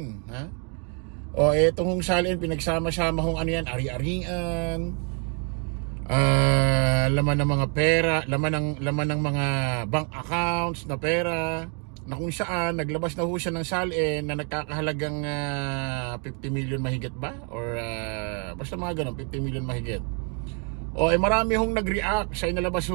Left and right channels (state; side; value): quieter; left; 38.1 dB